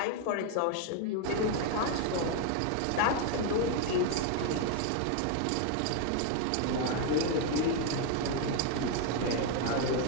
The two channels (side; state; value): both; different; correlation 0.01